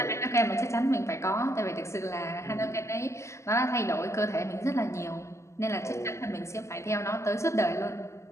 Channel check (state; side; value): late; right; 0.14 ms